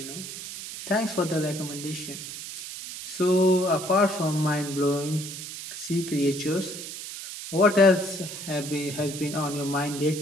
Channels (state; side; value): noise; right; hiss, 9 dB below the sound